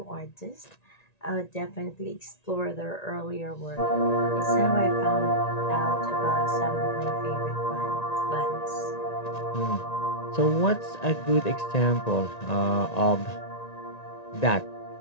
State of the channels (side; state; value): right; late; 1.9 ms